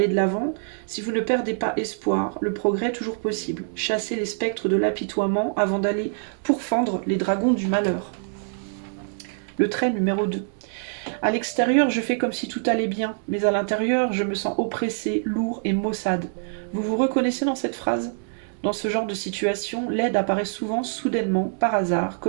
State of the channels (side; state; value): left; silent; 62 dB below the other